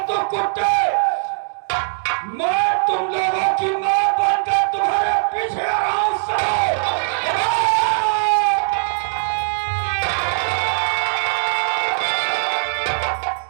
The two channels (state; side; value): silent; left; digital silence